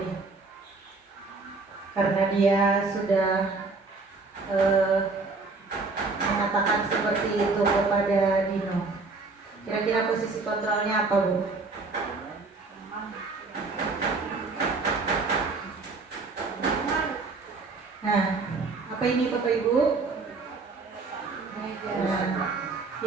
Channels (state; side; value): quieter; left; 3.9 dB